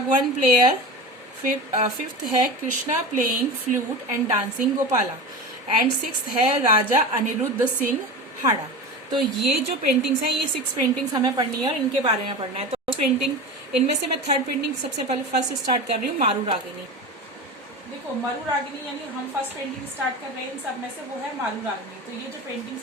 प्लेयर, फिफ्थ है Krishna playing flute and dancing Gopala, and sixth है राजा अनिरुद्ध सिंह हाड़ा। तो ये जो पेंटिंग्स हैं, ये 6 पेंटिंग्स हमें पढ़नी है और इनके बारे में पढ़ना है। तो पेंटिंग इनमें से मैं थर्ड पेंटिंग सबसे पहले फर्स्ट स्टार्ट कर रही हूँ, मारू रागिनी। देखो मारू रागिनी यानी हम फर्स्ट पेंटिंग स्टार्ट कर रहे हैं इन सब में से, वो है मारू रागिनी। तो ये जो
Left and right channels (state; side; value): normal; both; correlation 0.28